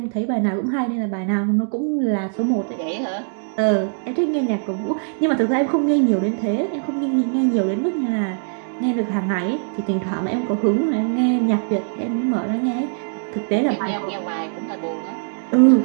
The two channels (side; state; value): left; silent; 65 dB below the other